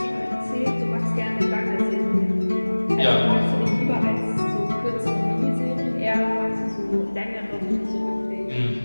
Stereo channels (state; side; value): inverted; both; correlation -1.00